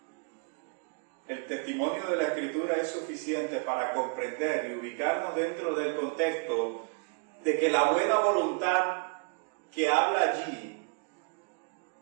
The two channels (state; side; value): quieter; left; 39.5 dB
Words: El testimonio de la Escritura es suficiente para comprender y ubicarnos dentro del contexto de que la buena voluntad que habla allí